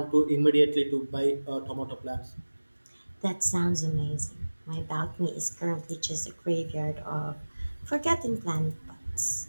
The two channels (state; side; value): inverted; both; correlation -1.00